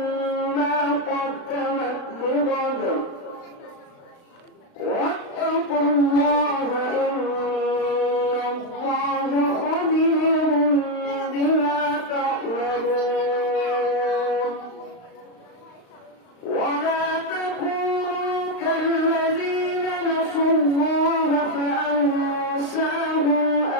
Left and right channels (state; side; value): late; right; 35 ms